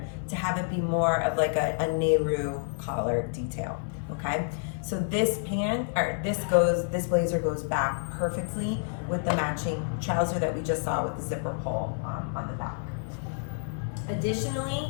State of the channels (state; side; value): silent; right; 55 dB below the other